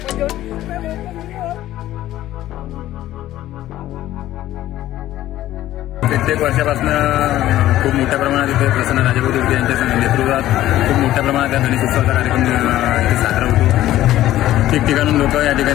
प्रत्येक वर्षापासून खूप मोठ्या प्रमाणात इथे प्रसन्न राजेभाऊ देवटे यांच्या नेतृत्वात खूप मोठ्या प्रमाणात या गणेश उत्सवाचा कार्यक्रम इथे साजरा होतो। ठिकठिकाणून लोक या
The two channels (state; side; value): quieter; right; 14.1 dB